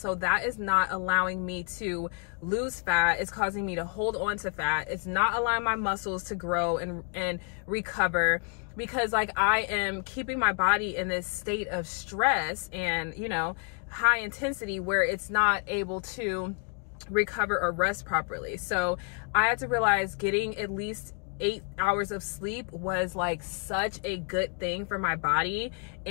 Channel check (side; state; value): right; quieter; 38.7 dB